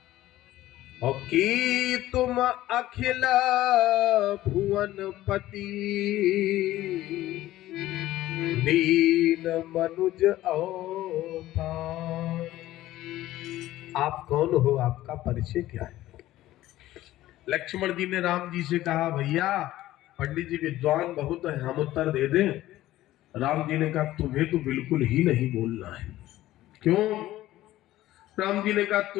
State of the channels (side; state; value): right; quieter; 15.2 dB